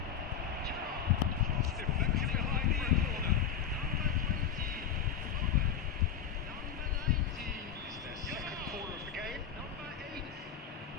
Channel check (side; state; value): right; quieter; 8.3 dB